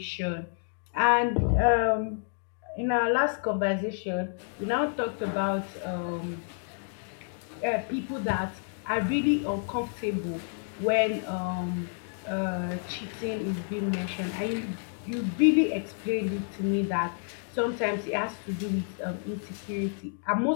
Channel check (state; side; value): silent; right; 58 dB below the other